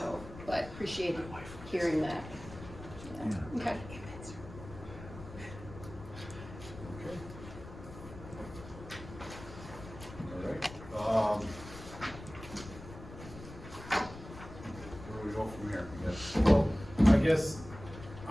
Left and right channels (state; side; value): noise; left; rumble, 14 dB below the sound